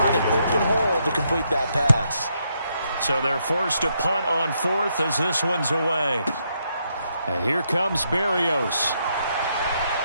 an open hole to complete that pass. So they're forced to punt on 4th as this one's away. And here comes Berrios.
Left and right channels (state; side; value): inverted; both; correlation -0.77